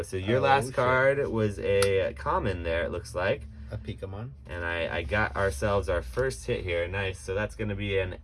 So your last card was a common there, it looks like. A Pokemon. And I got ourselves our first hit here. Nice. So that's going to be an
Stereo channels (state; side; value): identical; both; correlation 1.00